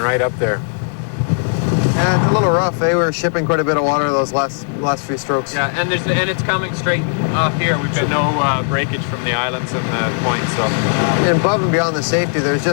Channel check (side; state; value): right; silent; 58 dB below the other